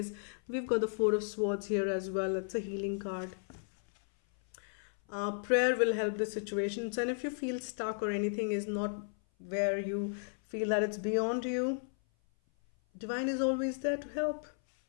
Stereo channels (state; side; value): silent; right; 55 dB below the other